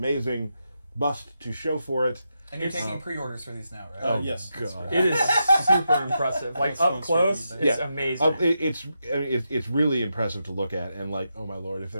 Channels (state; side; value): inverted; both; correlation -0.86